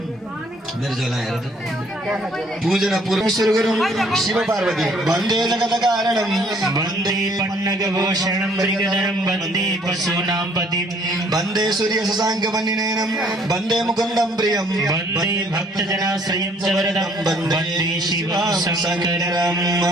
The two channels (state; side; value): normal; both; correlation 0.61